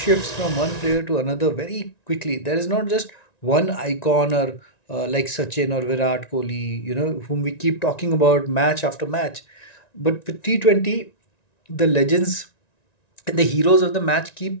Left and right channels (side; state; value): right; late; 1.9 ms